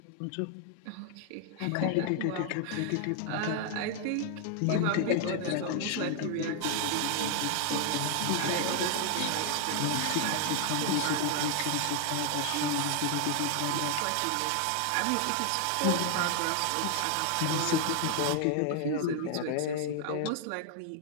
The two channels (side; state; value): both; different; correlation 0.00